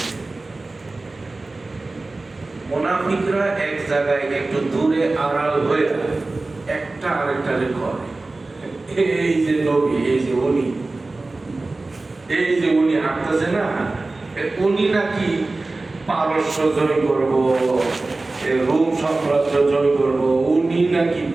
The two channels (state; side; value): quieter; left; 3.3 dB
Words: মুনাফিকরা এক জায়গায় একটু দূরে আড়াল হয়ে একটা আরেকটারে করে, এই যে নবী, এই যে উনি, এই যে উনি হাঁটতেছে না, উনি নাকি পারস্য জয় করব, রোম সাম্রাজ্য জয় করব, উনি নাকি